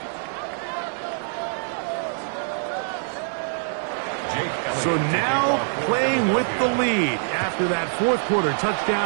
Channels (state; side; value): silent; left; digital silence